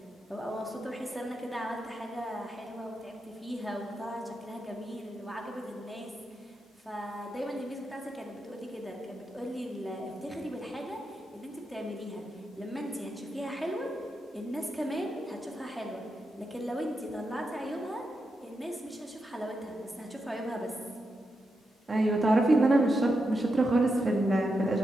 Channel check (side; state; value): both; normal; correlation 0.86